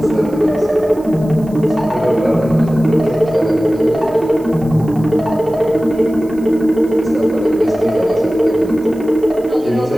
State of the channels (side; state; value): right; noise; hiss, 26 dB below the sound